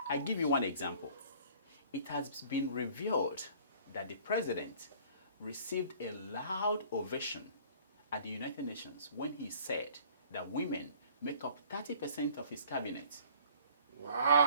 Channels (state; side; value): inverted; both; correlation -0.53